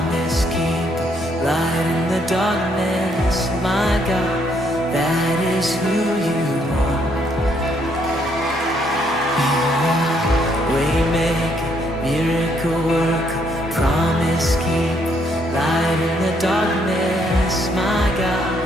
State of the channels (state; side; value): normal; both; correlation 0.71